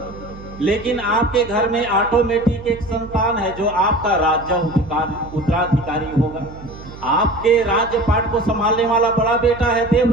लेकिन आपके घर में ऑटोमेटिक एक संतान है जो आपका राज्य उत्तराधिकारी होगा। आपके राज्य पाठ को संभालने वाला बड़ा बेटा है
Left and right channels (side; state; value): right; noise; hum, 16 dB below the sound